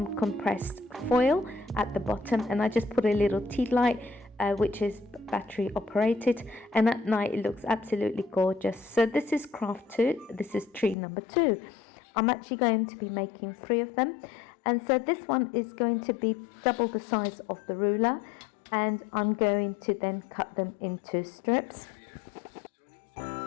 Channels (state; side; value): drops out; right; at 11.0 s